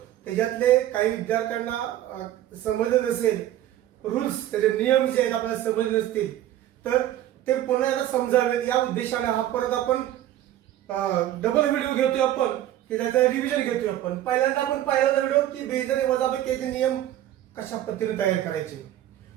त्याच्यातले काही विद्यार्थ्यांना समजलं नसेल, रूल्स त्याचे नियम जे आहेत आपल्याला समजले नसतील तर ते पुन्हा एकदा समजावेत या उद्देशाने हा परत आपण डबल व्हिडिओ घेतोय. आपण की त्याचं रिव्हिजन घेतोय. आपण पहिल्यांदा आपण पाहिला व्हिडिओ की बेरीज आणि वजाबाकीचे नियम कशा पद्धतीने तयार करायचे.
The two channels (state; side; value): quieter; left; 12.9 dB